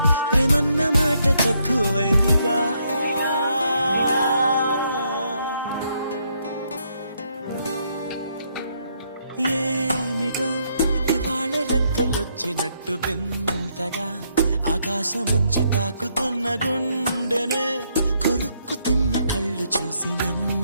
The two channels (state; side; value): inverted; both; correlation -0.74